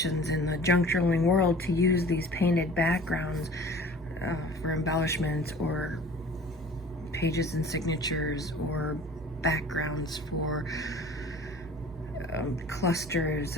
in the junk journaling world to use these painted backgrounds for embellishments, or pages and signatures, or backgrounds for clusters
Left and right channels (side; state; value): right; noise; hum, 19 dB below the sound